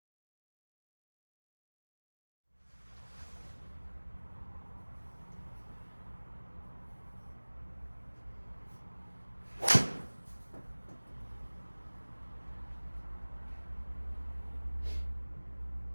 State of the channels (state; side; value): inverted; both; correlation -1.00